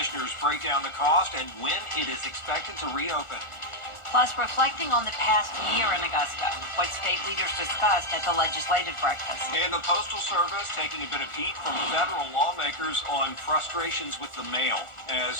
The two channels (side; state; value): right; late; 1.4 ms